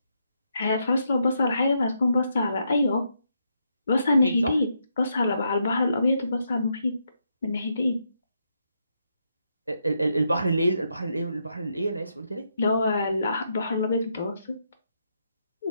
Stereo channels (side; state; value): both; inverted; correlation -0.80